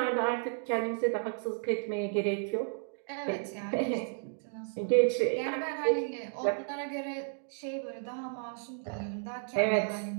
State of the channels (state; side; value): silent; left; 56 dB below the other